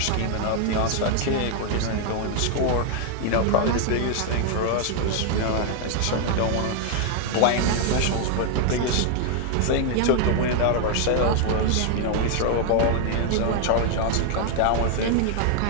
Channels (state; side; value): different; both; correlation 0.00